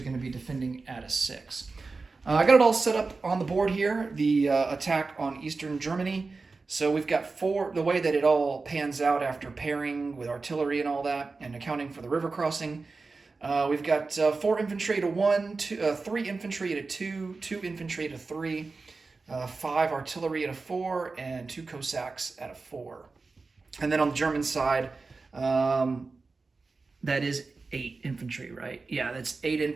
going to be defending at a 6. I got it all set up on the board here, the attack on eastern Germany. So we've got 4, the way that it all pans out after pairing with artillery and all that, and accounting for the river crossing. We've got 4 infantry at a 1, 3 infantry at a 2, 2 infantry at a 3, 5 artillery at a 4, and 2 Cossacks at a 4. And then on the German side, that is 8 infantry, right? Yeah, that's 8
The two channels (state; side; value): quieter; left; 4.0 dB